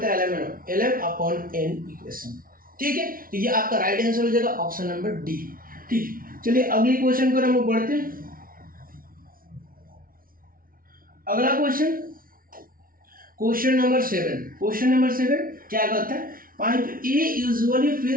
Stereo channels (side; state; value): left; late; 0.42 ms